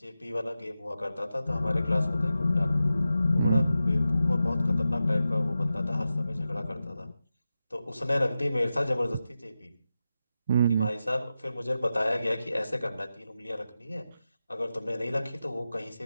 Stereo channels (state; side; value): inverted; both; correlation -0.91